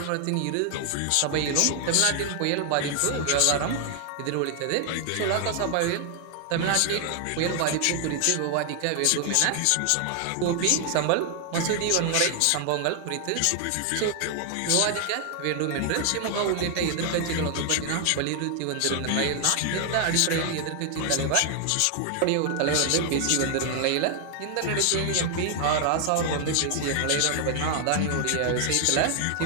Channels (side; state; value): both; different; correlation 0.00